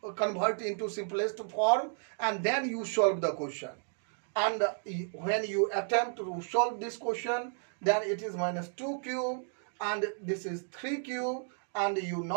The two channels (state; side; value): silent; left; 56 dB below the other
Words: convert into simplest form, and then you solve the question. And when you attempt to solve this question, then it is minus 2 cube and this is 3 cube, and you